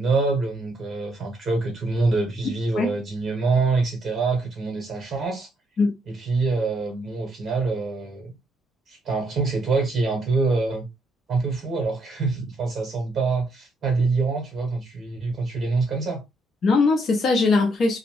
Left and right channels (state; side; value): normal; both; correlation 0.74